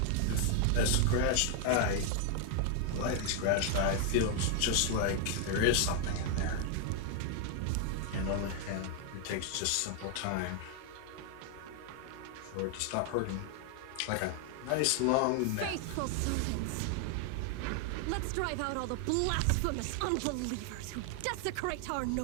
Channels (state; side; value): different; both; correlation 0.00